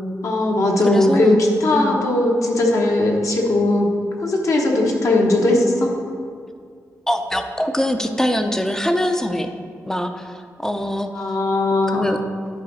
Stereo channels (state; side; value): normal; both; correlation 0.83